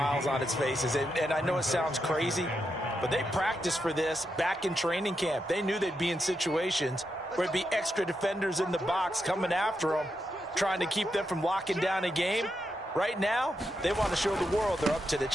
on its faces. And I know it sounds crazy, but they practiced for this back in training camp. They knew they'd be in situations where it'd be extra defenders in the box coming after them, trying to keep them from locking down a game. Right now, they want to show the world they're up to the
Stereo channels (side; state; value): both; normal; correlation 0.84